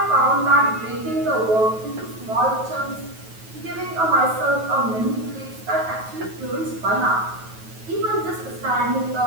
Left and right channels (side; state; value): left; late; 9.3 ms